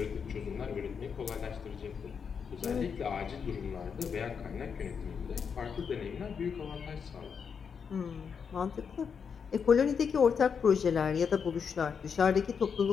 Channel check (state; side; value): quieter; right; 6.5 dB